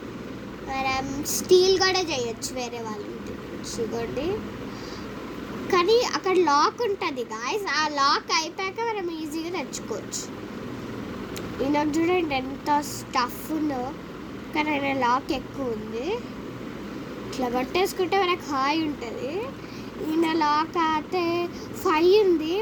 మనం స్టీల్ కూడా చేయొచ్చు వేరే వాళ్ళ ఇంటి చూడండి. కానీ అక్కడ లాక్ ఉంటుంది గాయస్, ఆ లాక్ అయిపోయాక మనం ఈజీగా తెచ్చుకోవచ్చు. ఈయన చూడండి ఎంత స్టఫ్ ఉందో, కానీ ఆయన లాక్ ఎక్కువ ఉంది. ఇట్లా పట్టేసుకుంటే మనకు హాయ్ ఉంటుంది. ఈయన లాక్ అయితే 5 ఉంది,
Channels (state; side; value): identical; both; correlation 1.00